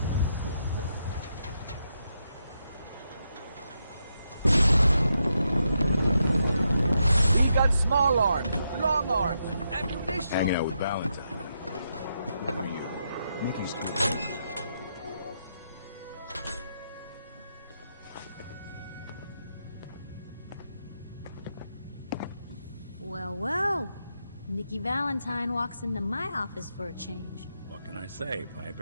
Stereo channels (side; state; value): both; inverted; correlation -0.82